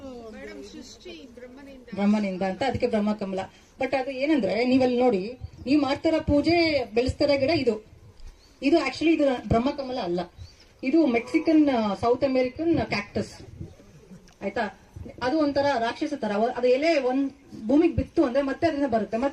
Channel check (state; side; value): identical; both; correlation 1.00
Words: ಬ್ರಹ್ಮನಿಂದ ಅಂತ, ಅದಕ್ಕೆ ಬ್ರಹ್ಮಕಮಲ. ಬಟ್ ಅದು ಏನಂದ್ರೆ ನೀವಲ್ಲಿ ನೋಡಿ, ನೀವು ಮಾಡ್ತಾರ ಪೂಜೆ, ಬೆಳೆಸ್ತಾರ ಗಿಡ ಇದು ಆಕ್ಚುಲಿ ಇದು ಬ್ರಹ್ಮಕಮಲ ಅಲ್ಲ. ಇದು ಮೆಕ್ಸಿಕನ್, ಸೌತ್ ಅಮೆರಿಕನ್ ಕ್ಯಾಕ್ಟಸ್. ಆಯ್ತಾ? ಅದು ಒಂಥರ ರಾಕ್ಷಸ ತರ. ಅದು ಎಲೆ ಒಂದ್ ಭೂಮಿಗೆ ಬಿತ್ತು ಅಂದ್ರೆ ಮತ್ತೆ ಅದರಿಂದ ಬರುತ್ತೆ.